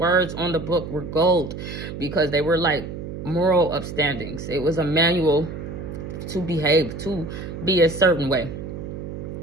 on the book were gold, because they were like moral upstandings. It was a manual to behave, to be a certain way.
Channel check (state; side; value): noise; right; hum, 8 dB below the sound